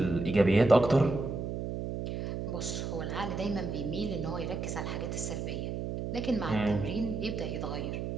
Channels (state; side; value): noise; right; hum, 4 dB below the sound